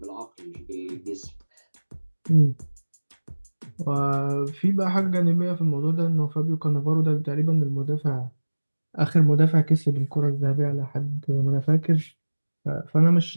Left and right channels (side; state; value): both; inverted; correlation -1.00